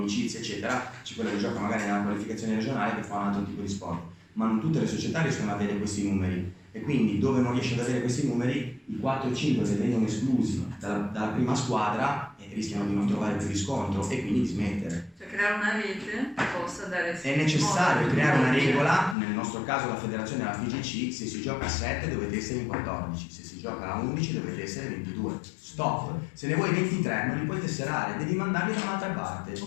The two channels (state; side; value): drops out; right; at 19.2 s